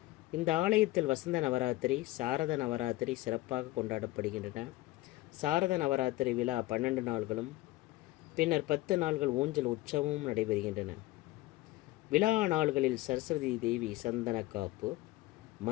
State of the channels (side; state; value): right; quieter; 18.4 dB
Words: இந்த ஆலயத்தில் வசந்த நவராத்திரி, சாரத நவராத்திரி சிறப்பாக கொண்டாடப்படுகின்றன. சாரத நவராத்திரி விழா 12 நாள்களும் பின்னர் 10 நாள்கள் ஊஞ்சல் உற்சவமும் நடைபெறுகின்றன. விழா நாள்களில் சரஸ்வதி தேவி சந்தன காப்பு,